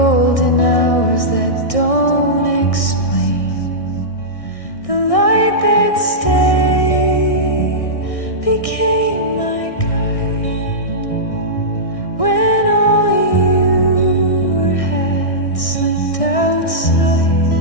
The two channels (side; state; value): right; late; 1.6 ms